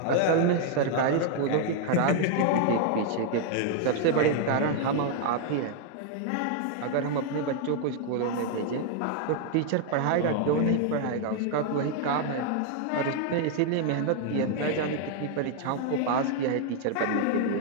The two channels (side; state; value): both; different; correlation 0.00